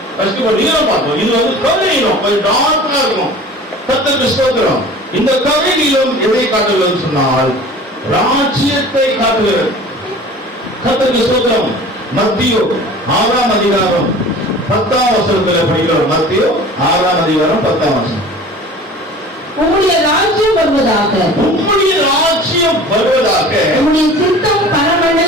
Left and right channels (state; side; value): normal; both; correlation 0.42